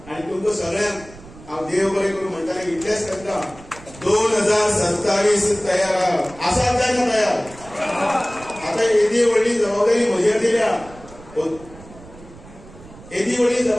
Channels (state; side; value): noise; right; rumble, 20 dB below the sound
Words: आनी तुमकां सगळ्यांक हांव देव बरें करून म्हणटाले इतलेंच करता 2027 तयार आसात काय ना तयार. आता येदी व्हडली जबाबदारी म्हजेर दिल्या. येदी व्हडली